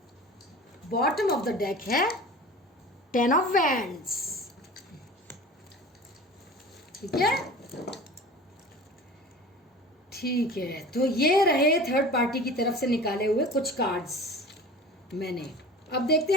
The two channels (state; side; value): normal; both; correlation 0.38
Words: Bottom of the deck है टेन ऑफ वैंड्स, ठीक है। ठीक है, तो ये रहे थर्ड पार्टी की तरफ से निकाले हुए कुछ कार्ड्स मैंने। अब देखते